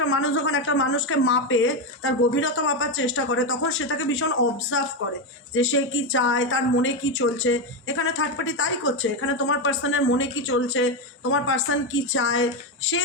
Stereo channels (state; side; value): normal; both; correlation 0.10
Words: মানুষ যখন একটা মানুষকে মাপে, তার গভীরতা মাপার চেষ্টা করে, তখন সে তাকে ভীষণ অবজার্ভ করে যে সে কি চায়, তার মনে কি চলছে। এখানে থার্ড পার্টি তাই করছে, এখানে তোমার পার্সনের মনে কি চলছে, তোমার পার্সন কি চায়, সে